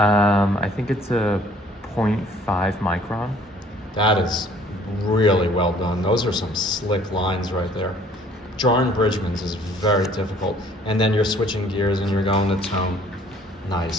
think it's a 0.5 micron. That is really well done. Those are some slick lines right there. Drawing Bridgman's is very difficult. And then you're switching gears and you're going to tone.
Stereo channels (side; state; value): both; normal; correlation 0.57